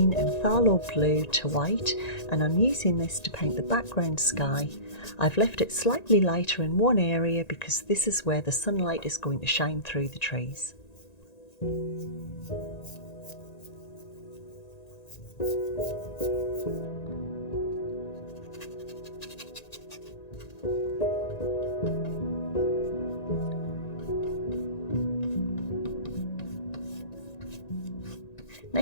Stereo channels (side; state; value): right; late; 1.9 ms